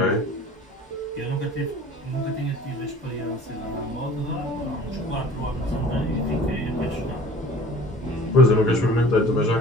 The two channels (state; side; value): normal; both; correlation 0.46